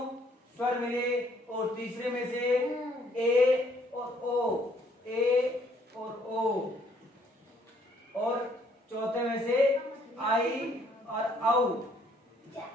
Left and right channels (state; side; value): normal; both; correlation 0.65